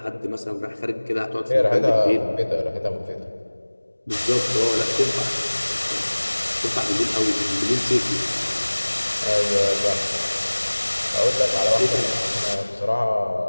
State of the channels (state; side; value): inverted; both; correlation -1.00